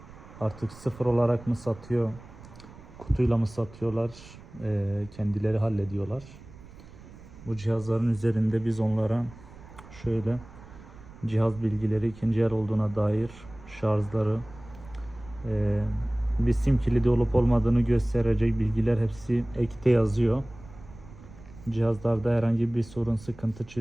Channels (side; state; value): right; noise; rumble, 19 dB below the sound